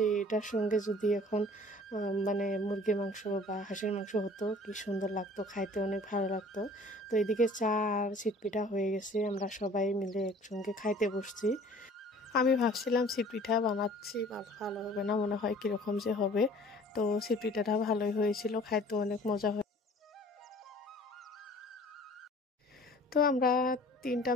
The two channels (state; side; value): normal; both; correlation 0.50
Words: এটার সঙ্গে যদি এখন মানে মুরগির মাংস বা হাঁসের মাংস হতো কি সুন্দর লাগতো, খাইতে অনেক ভালো লাগতো। তো এদিকে চা আর চিটপিঠা হয়ে গেছে, আমরা সবাই মিলে একসঙ্গে খাইতে বসছি। আমি ভাবছিলাম চিটপিঠা বানাচ্ছি ভালো হবে না, মনে হয় কীরকম যে হবে। তো চিটপিঠাটা ভালোই হয়েছিল, খাইতে অনেক মজা হয়। তো আমরা 3